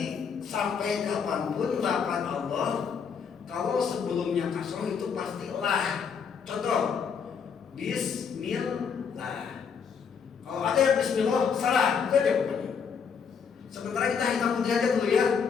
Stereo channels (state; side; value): quieter; right; 6.5 dB